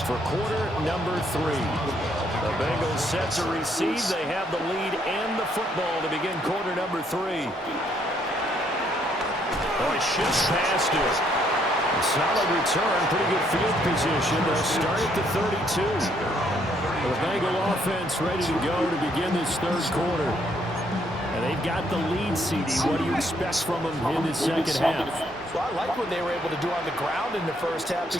for quarter number 3. The Bengals set to receive. They have the lead and the football to begin quarter number 3. Oh, he shifts past it. A solid return, pretty good field position. They'll start at the 32. The Bengal offense ready to go to begin this third quarter. And they've got the lead, CD. What do you expect from them in this second half? Well, I like what they were able to do on the ground in the first half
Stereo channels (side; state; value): both; normal; correlation 0.70